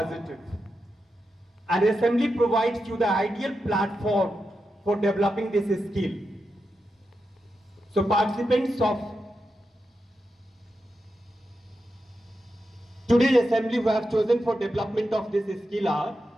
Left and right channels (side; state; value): both; normal; correlation 0.88